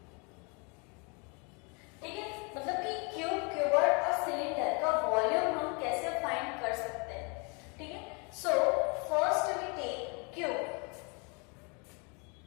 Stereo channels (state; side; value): quieter; right; 33.0 dB